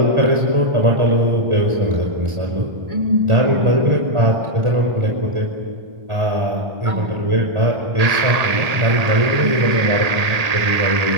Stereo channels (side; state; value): left; late; 1.8 ms